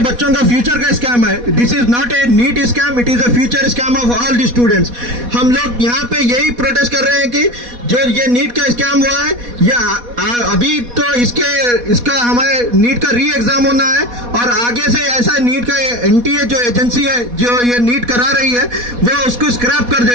का फ्यूचर का स्कैम है। This is not a NEET scam, it is a future scam of all the students. हम लोग यहाँ पे यही प्रोटेस्ट कर रहे हैं कि जो ये नीट का स्कैम हुआ है, ये अभी तो इसका हमारे नीट का री एग्जाम होना है और आगे से ऐसा नीट का NTA जो एजेंसी है जो ये नीट करा रही है वो उसको स्क्रैप कर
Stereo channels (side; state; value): left; late; 4.1 ms